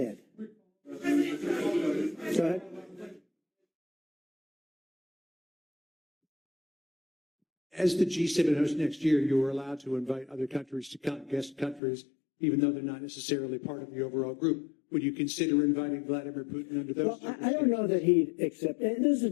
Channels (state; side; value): drops out; right; at 11.8 s